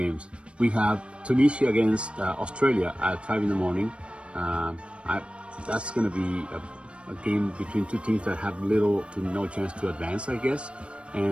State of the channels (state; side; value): late; left; 0.059 ms